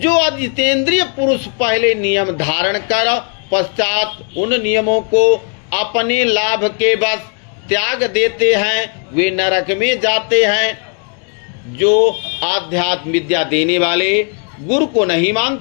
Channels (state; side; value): quieter; right; 38.5 dB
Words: अजितेंद्रिय पुरुष पहले नियम धारण कर पश्चात उन नियमों को अपने लाभ के बस त्याग देते हैं, वे नरक में जाते हैं। जो आध्यात्म विद्या देने वाले गुरु को नहीं